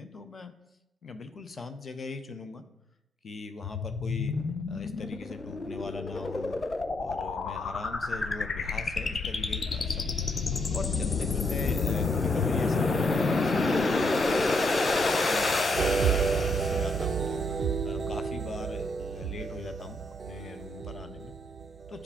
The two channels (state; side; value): normal; both; correlation 0.75